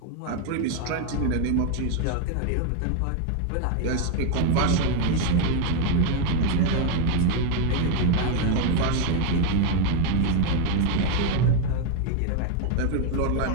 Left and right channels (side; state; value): both; different; correlation 0.01